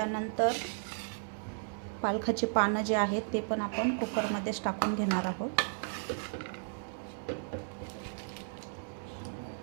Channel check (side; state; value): left; silent; 55 dB below the other